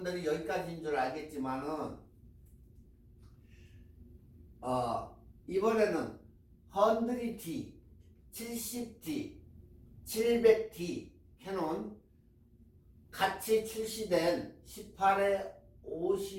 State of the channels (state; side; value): identical; both; correlation 1.00